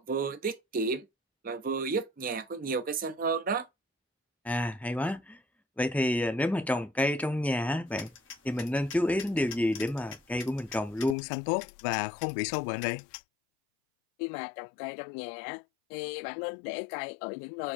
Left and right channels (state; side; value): drops out; right; at 11.2 s